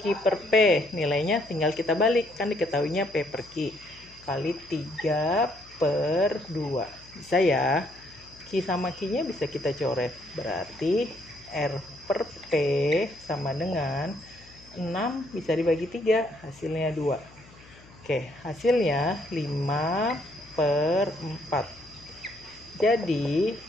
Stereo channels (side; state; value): left; noise; hum, 24 dB below the sound